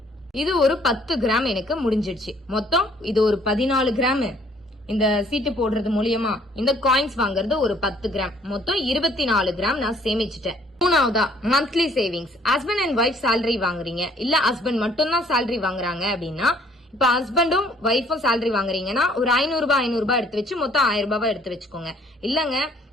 இது ஒரு 10 கிராம் எனக்கு முடிஞ்சிடுச்சு. மொத்தம் இது ஒரு 14 கிராம். இந்த சீட்டு போடுறது மூலியமா இந்த காயின்ஸ் வாங்குறது ஒரு 10 கிராம், மொத்தம் 24 கிராம் நான் சேமிச்சுட்டேன். மூணாவதா monthly savings. Husband and wife salary வாங்குறீங்க, இல்ல ஹஸ்பண்ட் மட்டும் தான் சேலரி வாங்குறாங்க அப்படின்னா, இப்ப ஹஸ்பண்டும் ஒய்ஃபும் சேலரி வாங்குறீங்கன்னா ஒரு 500 ரூபாய் எடுத்து வச்சு மொத்தம் 1000 ரூபாய் எடுத்து வச்சுக்கோங்க. இல்லங்க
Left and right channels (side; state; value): both; normal; correlation 0.61